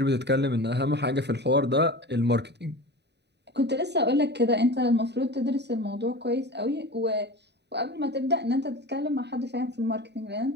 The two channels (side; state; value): left; late; 0.50 ms